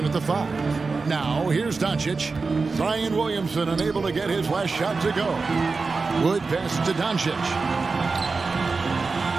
at the 5. Now, here's Doncic. Zion Williamson unable to get his last shot to go. Wood pass to Doncic.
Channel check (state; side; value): quieter; left; 4.2 dB